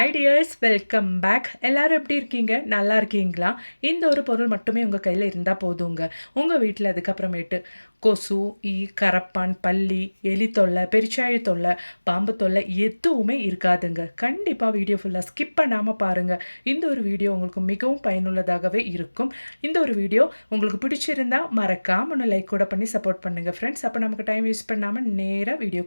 tears, welcome back. எல்லாரும் எப்படி இருக்கீங்க? நல்லா இருக்கீங்களா? இந்த ஒரு பொருள் மட்டுமே உங்கள் கையில் இருந்தால் போதுங்க. உங்கள் வீட்டில் அதுக்கப்புறமேட்டு கொசு, ஈ, கரப்பான், பல்லி, எலி தொல்லை, பெருச்சாழி தொல்லை, பாம்பு தொல்லை எதுவுமே இருக்காதுங்க. கண்டிப்பாக வீடியோ ஃபுல்லாக ஸ்கிப் பண்ணாமல் பாருங்கள். இந்த ஒரு வீடியோ உங்களுக்கு மிகவும் பயனுள்ளதாகவே இருக்கும். இந்த ஒரு வீடியோ உங்களுக்கு பிடிச்சிருந்தா மறக்காம ஒன்று லைக் கூட பண்ணி சப்போர்ட் பண்ணுங்கள் ஃப்ரெண்ட்ஸ். அப்போ நமக்கு டைம் வேஸ்ட் பண்ணாமல் நேராக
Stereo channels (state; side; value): inverted; both; correlation -1.00